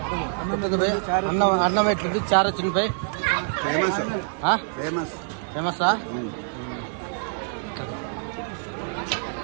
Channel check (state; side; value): silent; left; 61 dB below the other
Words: అన్నం ఎట్లుంది? చారు వచ్చింది పై ఫేమసా?